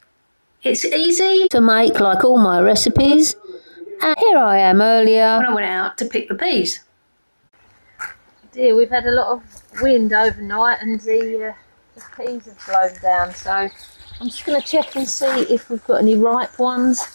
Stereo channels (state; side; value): inverted; both; correlation -1.00